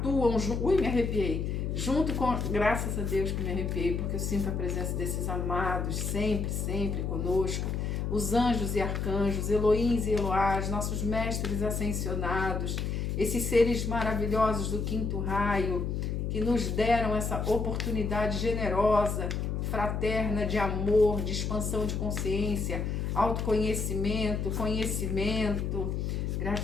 junto. Ui, me arrepiei. Junto com. Graças a Deus que me arrepiei, porque eu sinto a presença desses amados sempre conosco. Os anjos e arcanjos, Elohims e Eloás, nossos mestres ascensionados, esses seres maravilhosos do quinto raio, que nos deram essa oportunidade generosa, fraterna, de amor, de expansão de consciência, autoconhecimento, conhecimento.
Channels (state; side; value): noise; left; hum, 1 dB below the sound